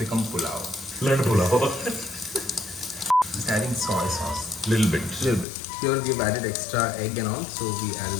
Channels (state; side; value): drops out; right; at 5.5 s